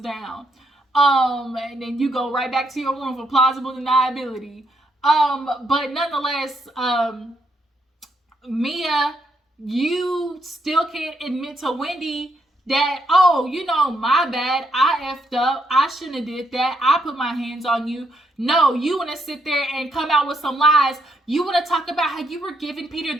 down. And then you go right back to your room for plausible deniability. But nonetheless, Mia, you still can't admit to Wendy that, oh, my bad, I effed up, I shouldn't have did that, I put my hands on you. No, you want to sit there and come out with some lies. You want to talk about how you were giving Peter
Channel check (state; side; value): normal; both; correlation 0.76